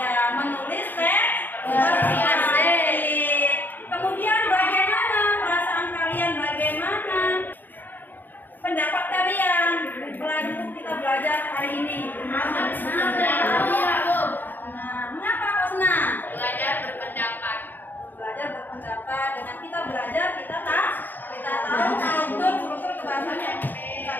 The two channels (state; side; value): late; right; 0.089 ms